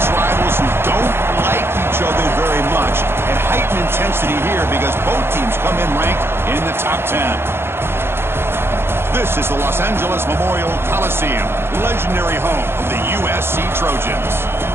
rivals who don't like each other very much, and heightened intensity here because both teams come in ranked in the top 10. This is the Los Angeles Memorial Coliseum, legendary home of the USC Trojans.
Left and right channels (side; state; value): left; late; 0.11 ms